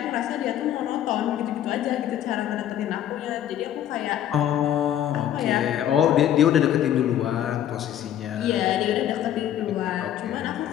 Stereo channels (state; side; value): quieter; right; 11.0 dB